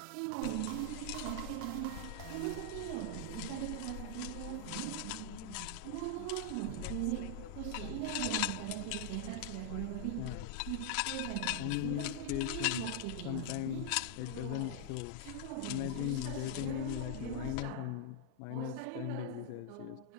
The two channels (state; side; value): different; both; correlation 0.00